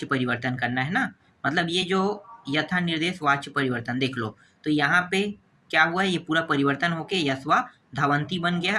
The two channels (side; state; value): both; identical; correlation 1.00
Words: परिवर्तन करना है ना, मतलब ये जो यथा निर्देश वाच्य परिवर्तन देख लो। तो यहाँ पे क्या हुआ है? ये पूरा परिवर्तन होके यस्वा धावंती बन गया